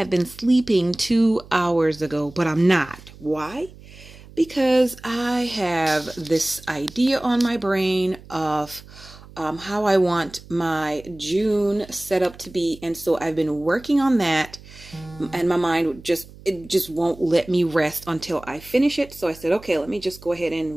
been sleeping 2 hours ago, but I'm not. Why? Because I have this idea on my brain of how I want my June setup to be. And so I've been working on that, and my mind just won't let me rest until I finish it. So I said, okay, let me just go ahead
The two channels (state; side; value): noise; right; hum, 20 dB below the sound